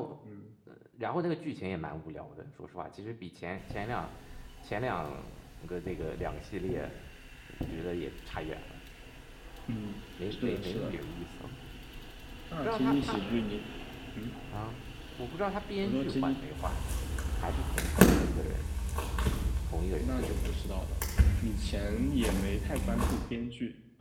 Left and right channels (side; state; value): both; identical; correlation 1.00